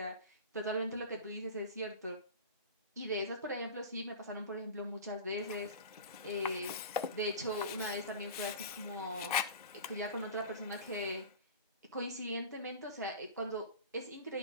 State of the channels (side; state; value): both; inverted; correlation -0.32